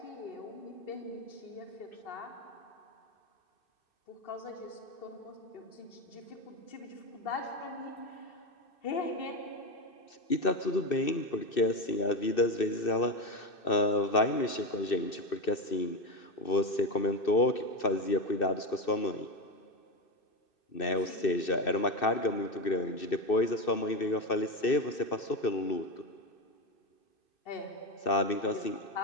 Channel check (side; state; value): right; late; 2.6 ms